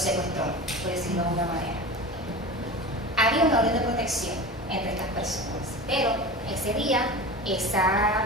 por decirlo de alguna manera. había una orden de protección entre estas personas, pero ese día esa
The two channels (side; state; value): both; normal; correlation 0.30